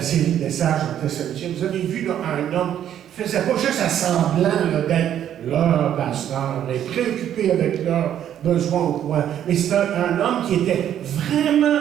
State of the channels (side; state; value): left; quieter; 10.4 dB